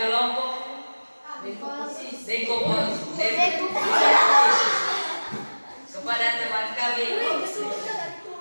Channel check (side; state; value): both; inverted; correlation -1.00